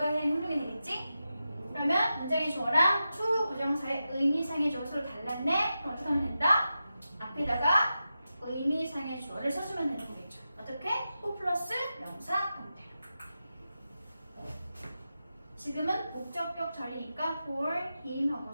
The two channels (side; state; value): both; inverted; correlation -0.90